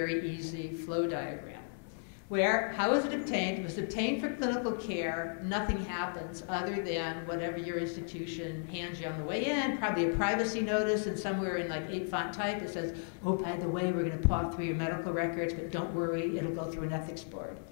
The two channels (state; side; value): silent; right; 55 dB below the other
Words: easy flow diagram. How was it obtained? It was obtained for clinical care. Nothing happens other than whatever your institution hands you on the way in, probably a privacy notice, and somewhere in like 8-font type it says, oh, by the way, we're going to paw through your medical records, but don't worry, it'll go through an ethics board.